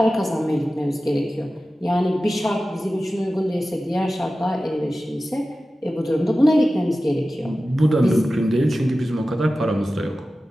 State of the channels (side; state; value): both; normal; correlation 0.95